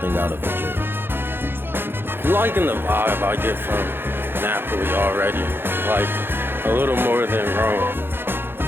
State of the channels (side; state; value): left; late; 0.10 ms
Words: out of a dream. I'm liking the vibe I get from Napoli already, like a little more than Rome.